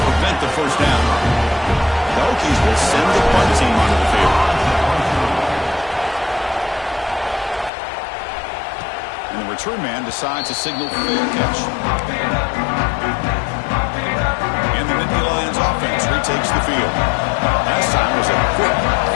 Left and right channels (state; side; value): drops out; right; at 7.7 s